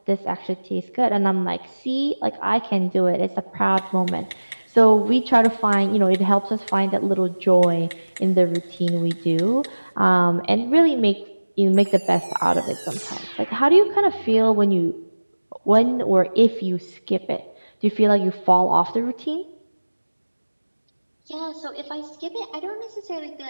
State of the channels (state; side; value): inverted; both; correlation -1.00